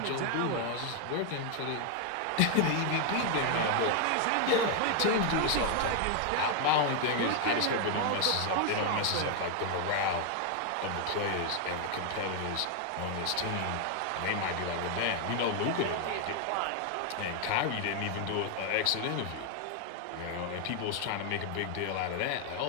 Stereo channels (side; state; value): both; different; correlation 0.00